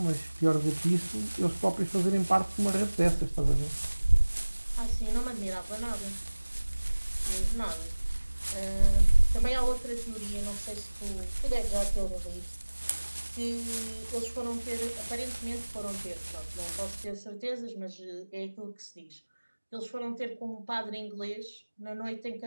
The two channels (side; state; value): both; inverted; correlation -1.00